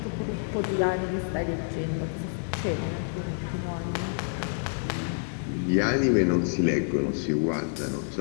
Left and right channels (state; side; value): silent; right; digital silence